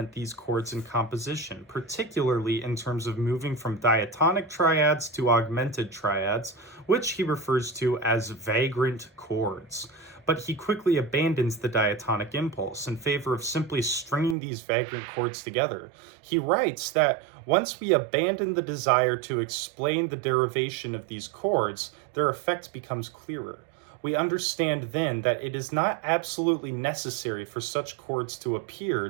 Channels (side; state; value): left; drops out; at 14.4 s